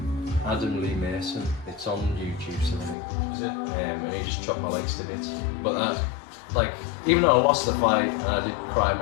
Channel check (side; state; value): right; drops out; at 3.0 s